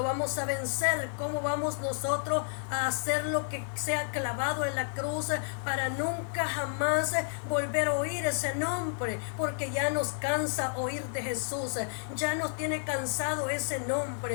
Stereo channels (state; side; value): silent; right; digital silence